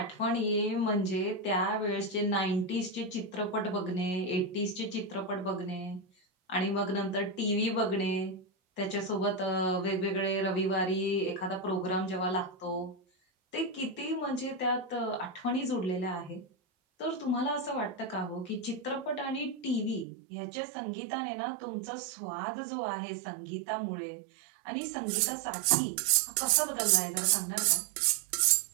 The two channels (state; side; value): drops out; left; at 20.1 s